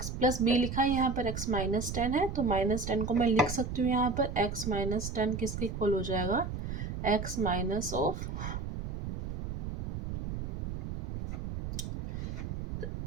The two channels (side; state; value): right; noise; rumble, 5 dB below the sound